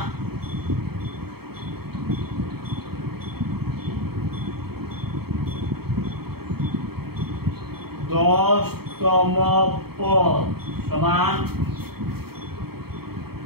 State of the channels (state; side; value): late; left; 0.95 ms